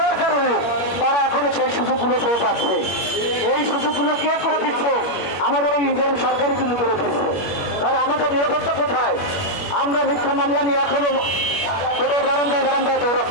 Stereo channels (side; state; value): right; late; 21 ms